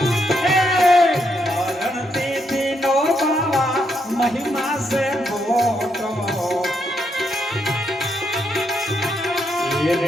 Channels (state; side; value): normal; both; correlation 0.78